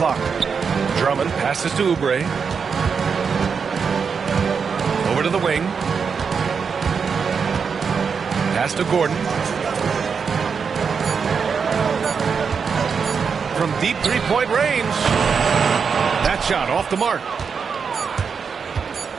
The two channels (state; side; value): quieter; left; 6.0 dB